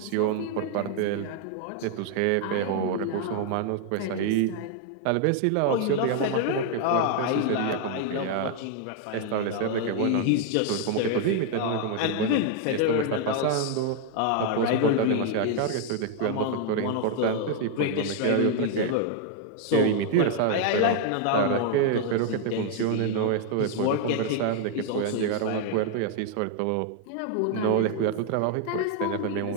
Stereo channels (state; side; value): different; both; correlation 0.00